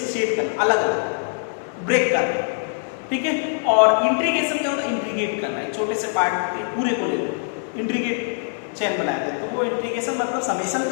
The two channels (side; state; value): right; silent; digital silence